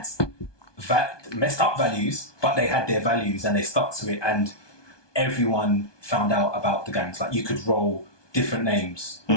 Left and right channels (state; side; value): late; right; 1.2 ms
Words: messed up values, but they had their values and they stuck to it, and everyone found out about the gangs. Like you could roll different names.